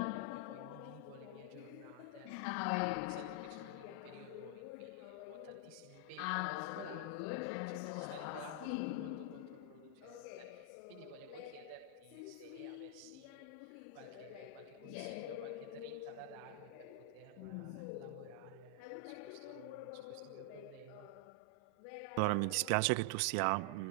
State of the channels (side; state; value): both; different; correlation 0.00